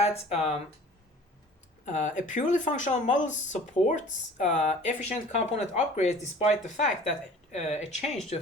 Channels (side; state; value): both; normal; correlation 0.47